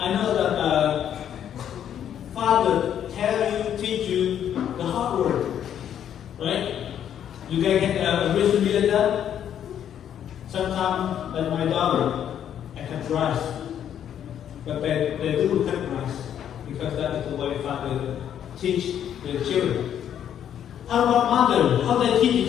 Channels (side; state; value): right; quieter; 9.7 dB